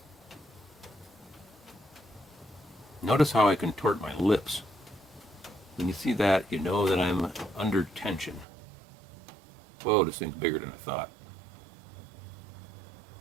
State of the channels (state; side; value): drops out; left; at 8.5 s